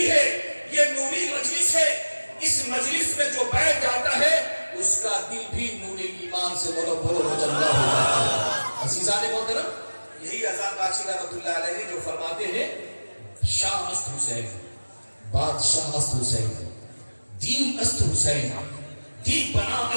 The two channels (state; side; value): inverted; both; correlation -1.00